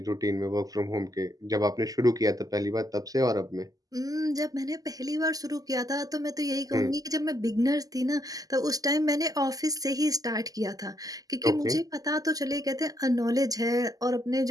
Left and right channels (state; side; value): late; left; 0.17 ms